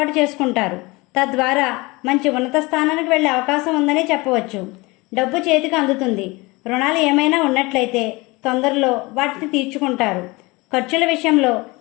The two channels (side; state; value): right; quieter; 23.9 dB